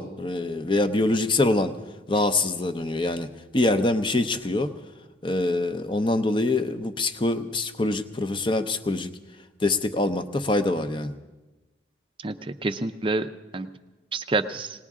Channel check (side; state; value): both; normal; correlation 0.60